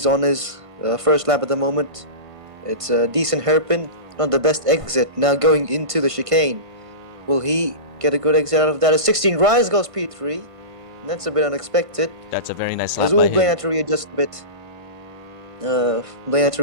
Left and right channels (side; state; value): left; late; 1.5 ms